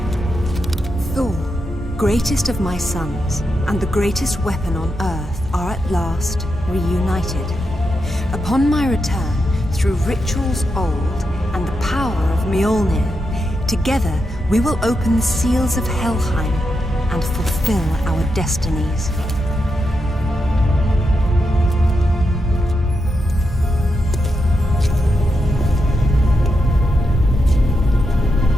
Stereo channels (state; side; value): normal; both; correlation 0.86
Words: Thor, greatest of my sons, and the greatest weapon on earth, are at last reunited. Upon my return, through rituals old and the power of Mjolnir, together we will open the seals of Helheim and fulfill our destinies.